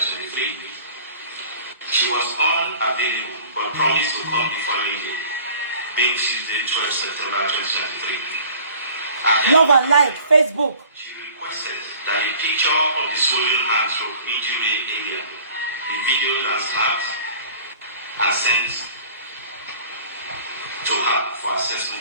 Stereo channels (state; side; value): inverted; both; correlation -0.48